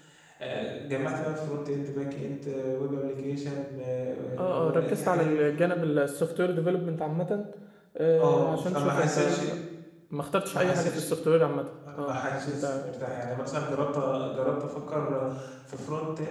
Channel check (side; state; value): both; identical; correlation 1.00